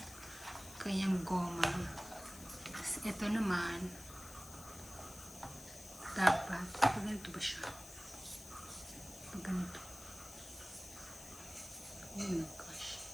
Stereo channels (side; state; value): left; noise; hiss, 15 dB below the sound